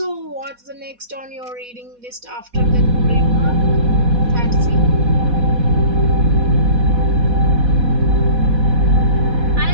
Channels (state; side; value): late; left; 4.1 ms